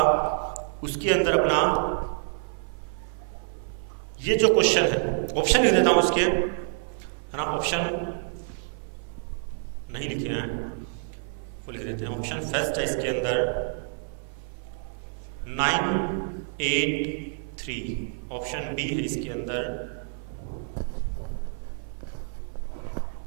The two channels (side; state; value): left; silent; 56 dB below the other